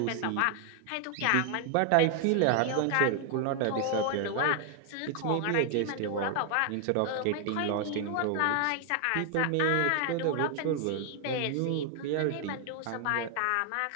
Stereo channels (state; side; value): different; both; correlation 0.00